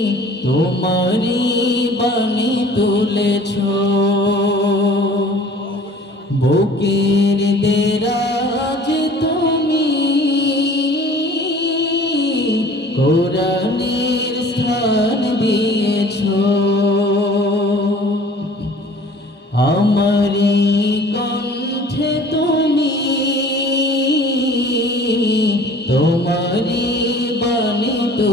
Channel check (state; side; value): normal; both; correlation 0.49